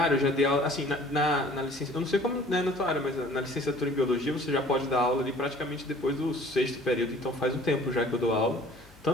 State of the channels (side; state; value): left; noise; hum, 25 dB below the sound